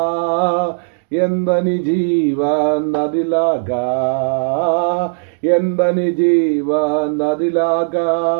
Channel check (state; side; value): silent; left; digital silence